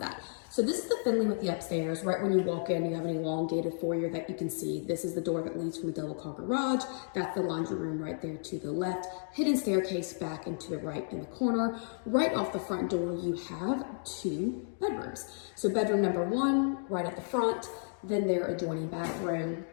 So this is the Finley with the upstairs. Right when you walk in, you have an elongated foyer that you can see. This is the door that leads from the double car garage. That's the laundry room right there to the left. Hidden staircase back into the right in the corner. Right off the front door, you have 2 bedrooms. So bedroom number 1, right at the front, then their adjoining bathroom.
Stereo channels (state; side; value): silent; right; digital silence